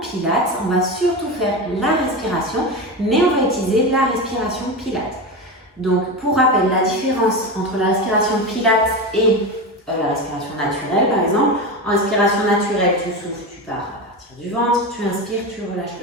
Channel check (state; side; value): normal; both; correlation 0.21